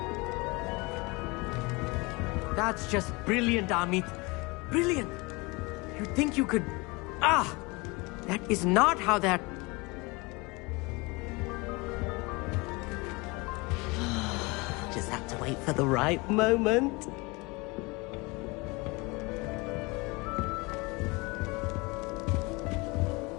That's just brilliant, Amit. Brilliant. You'd think you could... Ah! That is not how that... Just have to wait for the right moment.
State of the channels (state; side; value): quieter; right; 26.0 dB